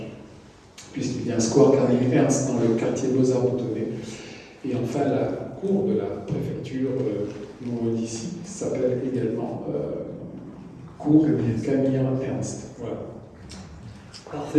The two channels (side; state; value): both; identical; correlation 1.00